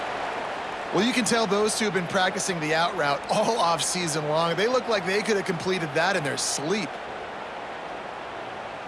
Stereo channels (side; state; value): both; identical; correlation 1.00